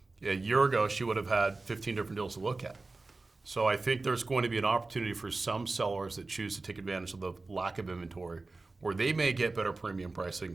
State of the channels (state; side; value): quieter; left; 3.5 dB